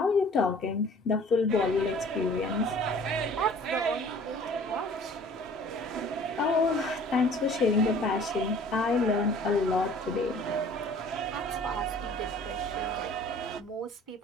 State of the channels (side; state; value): both; normal; correlation 0.50